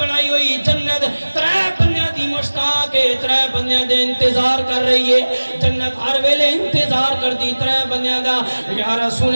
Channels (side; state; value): both; inverted; correlation -1.00